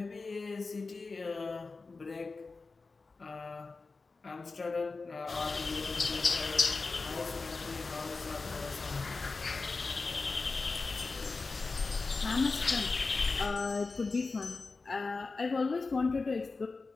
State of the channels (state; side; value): quieter; right; 4.0 dB